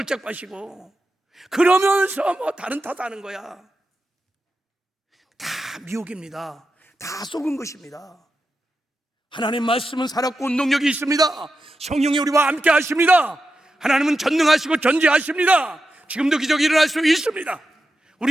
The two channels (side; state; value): both; normal; correlation 0.90